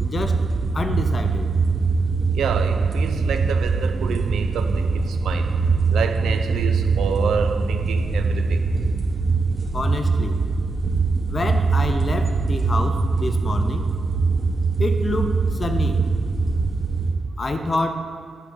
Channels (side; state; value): left; quieter; 3.4 dB